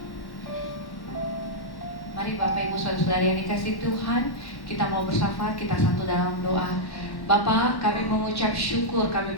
Mari Bapak Ibu Saudara yang dikasihi Tuhan, kita mau bersyafaat, kita satu dalam doa. Bapa, kami mengucap syukur, kami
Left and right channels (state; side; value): late; right; 1.1 ms